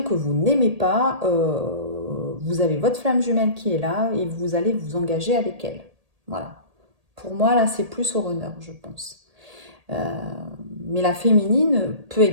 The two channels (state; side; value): late; left; 1.8 ms